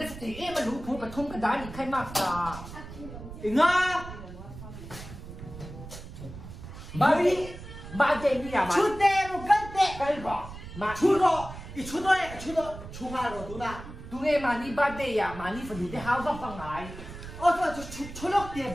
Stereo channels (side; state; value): right; noise; rumble, 13 dB below the sound